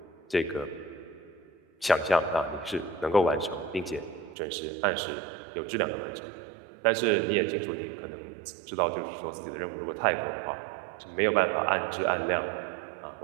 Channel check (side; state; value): left; drops out; at 4.4 s